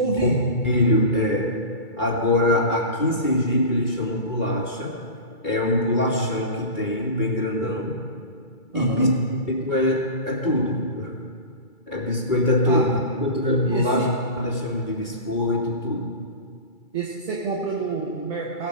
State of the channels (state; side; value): late; right; 2.3 ms